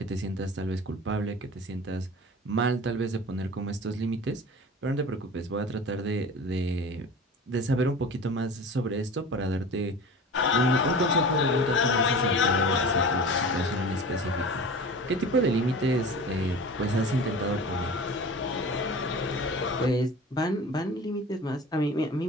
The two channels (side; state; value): both; normal; correlation 0.36